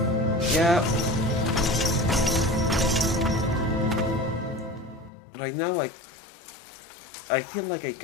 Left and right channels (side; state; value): right; drops out; at 5.1 s